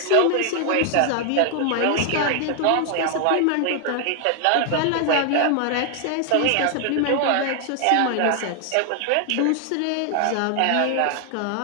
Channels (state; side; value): different; both; correlation 0.00